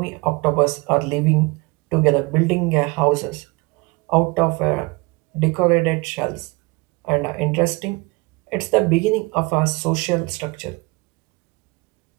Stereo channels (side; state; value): left; quieter; 25.2 dB